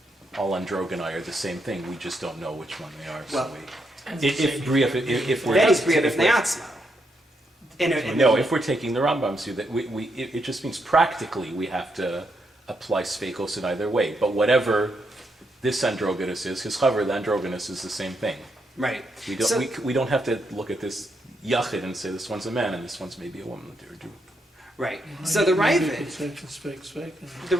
all androgyni are the same thing? We just don't know which one they are. Well, if we're that is bria b'fnei atzma. No, if we're taking the Rambam's view, that it just means practically we have to apply sfeikos in either way. But whatever this androgynous is, his chaver, the androgynous is the same thing. Right. We don't have to look at this yachid and say this one's a man and this one's maybe a woman. Right. So the Maybe you Ravid, could say it's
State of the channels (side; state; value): both; normal; correlation 0.79